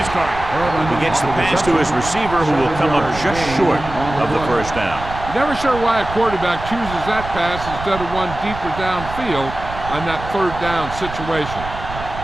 target. He gets the pass to his receiver, who will come up just short of the first down. You're never sure why a quarterback chooses that pass instead of one deeper downfield on that third down situation.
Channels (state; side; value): noise; right; rumble, 10 dB below the sound